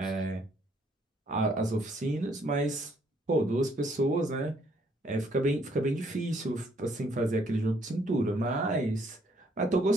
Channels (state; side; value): normal; both; correlation 0.67